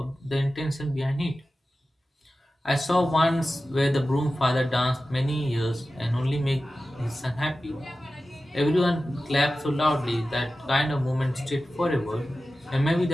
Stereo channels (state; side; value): normal; both; correlation 0.94